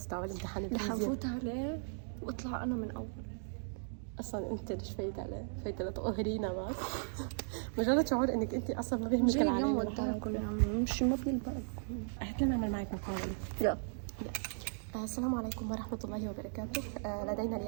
تاع الامتحان رح الفيزياء. نفوت عليه واطلع انا من اول. اصلا انت ليش فايت عليه؟ فايت لتقهرينا بس. مجرد شعور انك انت اصلا ما بيهمك جاي اليوم العالم وداكم يا عمي، مش ما بيلبقكم. قلت لنا نعمل معك مقابلة. يلا. السلام عليكم ورحمة الله وبركاته. لدينا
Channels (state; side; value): silent; left; digital silence